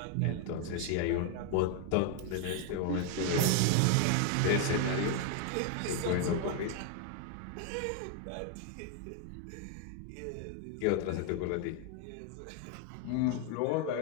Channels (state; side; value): different; both; correlation 0.01